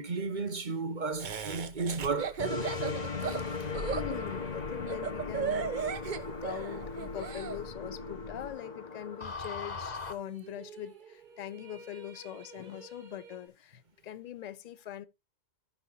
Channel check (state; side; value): late; left; 2.2 ms